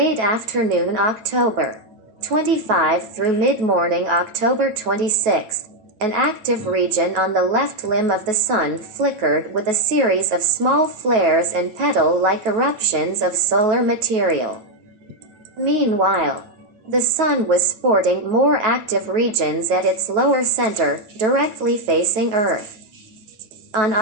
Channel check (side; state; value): left; late; 9.2 ms